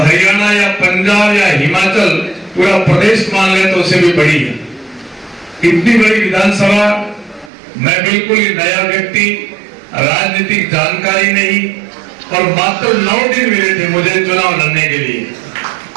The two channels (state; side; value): drops out; left; at 7.5 s